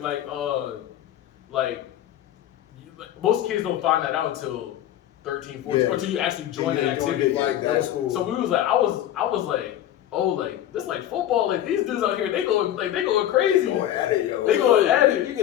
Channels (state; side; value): quieter; right; 12.0 dB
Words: Like most kids don't find that out until 13, 14, Yeah. or until you actually join the activity. Like that was cool. So we was like, I was like, oh, like this like football. Like these dudes out here, they going crazy. Going at it, yo. They going at it. You